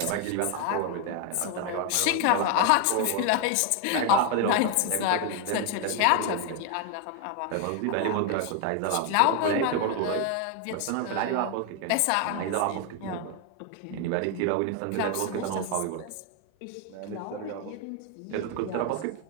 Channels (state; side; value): different; both; correlation 0.01